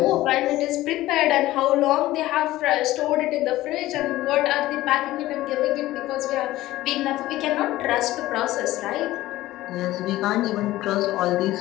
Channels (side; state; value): right; quieter; 16.3 dB